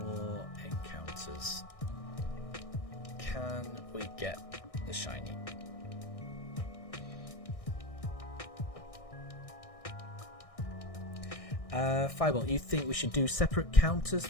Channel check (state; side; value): late; right; 1.6 ms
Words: encounters. Can we get the shiny? Fireball, you think we should do separate counters